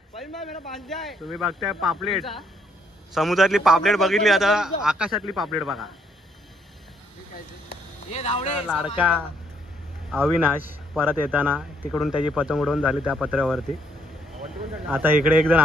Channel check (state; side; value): normal; both; correlation 0.70